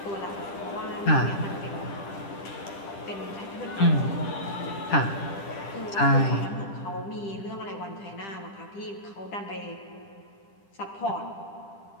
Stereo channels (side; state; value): right; late; 10 ms